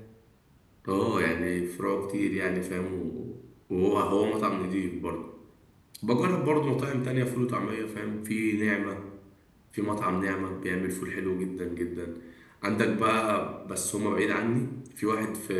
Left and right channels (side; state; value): both; identical; correlation 1.00